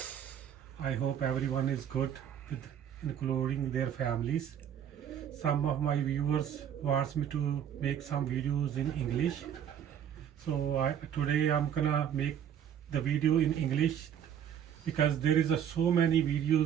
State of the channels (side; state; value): left; quieter; 9.3 dB